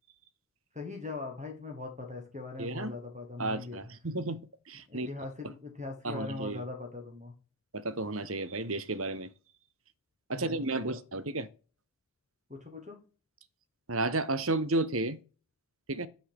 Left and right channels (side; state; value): both; normal; correlation -0.03